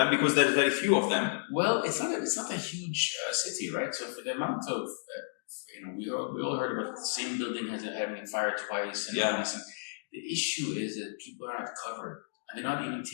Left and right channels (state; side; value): silent; right; digital silence